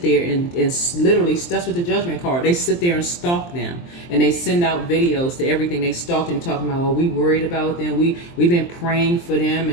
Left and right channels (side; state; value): right; late; 23 ms